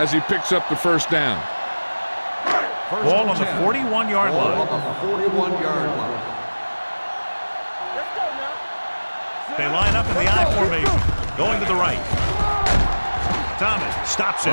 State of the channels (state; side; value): inverted; both; correlation -1.00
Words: he picks up the 1st down. Ball on the 41-yard Ball line. on the 41-yard line. Let's go now. They line up in the I formation. Going to the right. Thomas stops